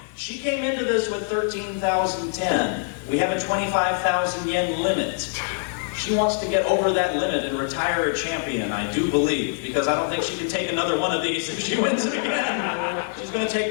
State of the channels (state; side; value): silent; right; digital silence